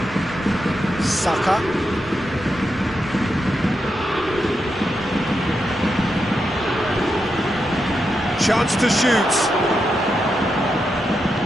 Saka. Chance to shoot.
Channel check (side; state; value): both; normal; correlation 0.85